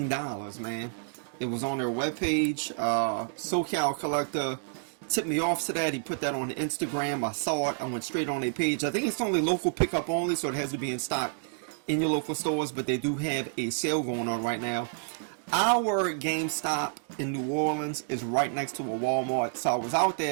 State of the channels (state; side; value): silent; left; digital silence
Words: man. It was on their webpage. SoCal Collector tipped me off to that. He put that on Instagram. I saw it. I went straight on their page. I think it's only local pickup only, so it has to be in stock in your local stores, but they do have a sale going on right now. Our GameStop in New Orleans is right next to a Walmart, so I was out